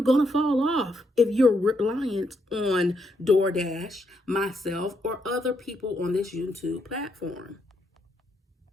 going to fall off if you're reliant on DoorDash, myself, or other people on this YouTube platform.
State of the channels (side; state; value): both; normal; correlation 0.78